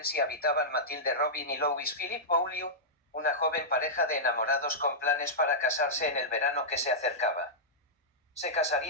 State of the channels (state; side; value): normal; both; correlation -0.11